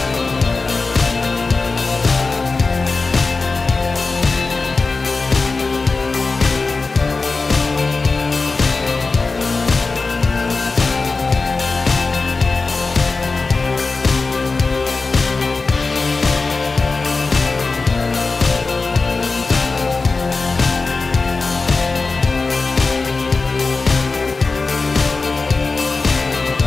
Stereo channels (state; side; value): quieter; right; 4.0 dB